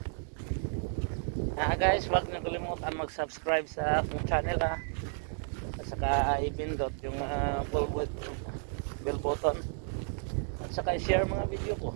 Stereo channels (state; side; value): silent; left; 55 dB below the other